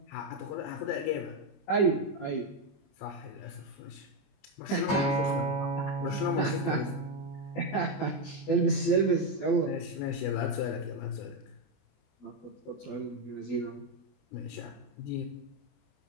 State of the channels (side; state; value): right; late; 20 ms